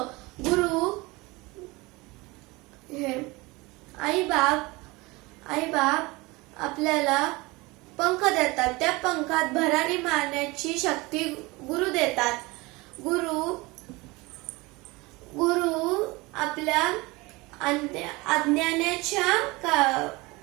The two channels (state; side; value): quieter; left; 23.4 dB